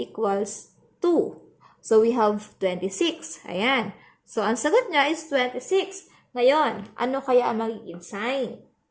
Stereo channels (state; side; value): identical; both; correlation 1.00